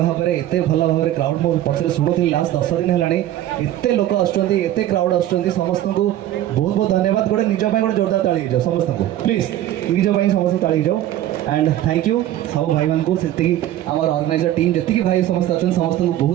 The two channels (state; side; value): quieter; left; 13.0 dB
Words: में एते भल भाव में क्राउड मो पचर शुणुली लास्ट 10 दिन है एते लोक आते क्राउड आसुँच समस्त को बहुत बहुत धन्यवाद गोटे निज गोटे जोरदार ताली जाओ समस्त को प्लीज निज समस्त ताली जाओ एंड थैंक यू सब भाई मान को आमर ऑर्गेनाइजर टीम जी भाई समस्त अच्छे समस्त को